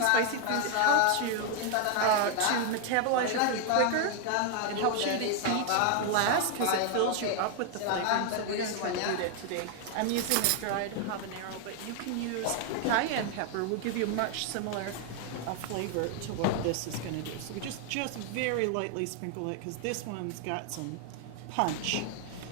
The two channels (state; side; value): different; both; correlation 0.00